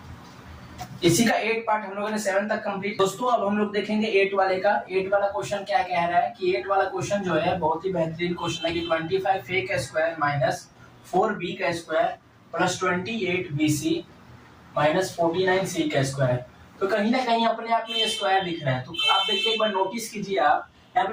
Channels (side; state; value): both; identical; correlation 1.00